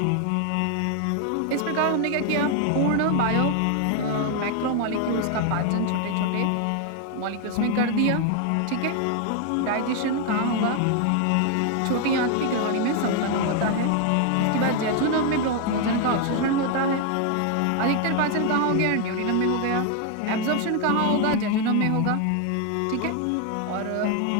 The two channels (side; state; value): both; different; correlation 0.00